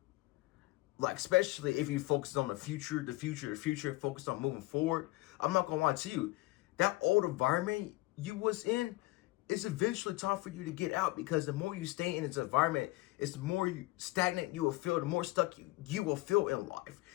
like especially if you focus on the future, focus on moving forward, I'm not gonna lie to you, that old environment you was in, it's eventually time for you to get out, because the more you stay in this environment, it's the more stagnant you will feel, the more stuck you will feel in life.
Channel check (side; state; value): right; quieter; 20.2 dB